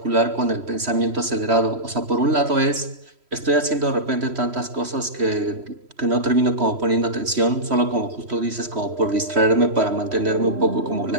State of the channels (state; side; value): late; left; 3.1 ms